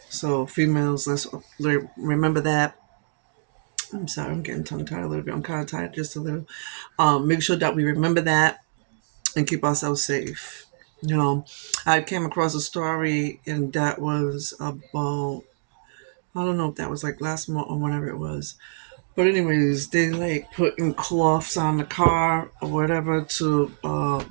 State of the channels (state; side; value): silent; left; digital silence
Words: So females, let's remember that. I'm sorry, I'm getting tongue tied a little bit. I'm kind of tired just a little. Make sure that we remember that and keep ourselves safe. I came across a story and that was about, I don't know if that was like last month or whenever it was. But anyways, they like putting cloths on the car or whatever to